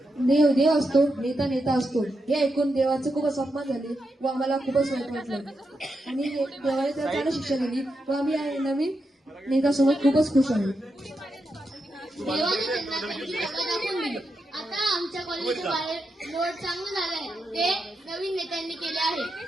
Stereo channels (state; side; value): normal; both; correlation 0.85